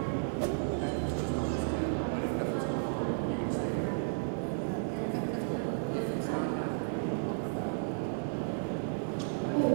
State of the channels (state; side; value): silent; left; digital silence